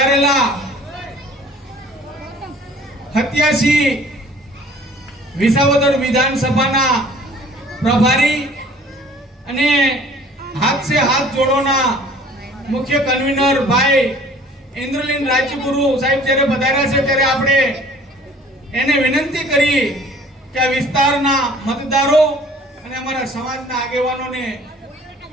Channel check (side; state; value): both; normal; correlation 0.52